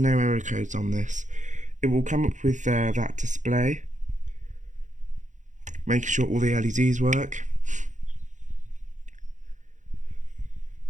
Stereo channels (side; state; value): left; late; 0.36 ms